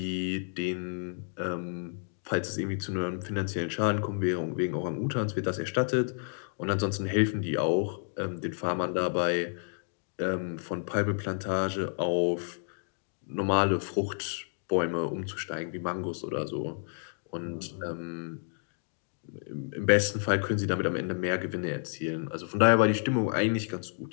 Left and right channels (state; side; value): silent; right; digital silence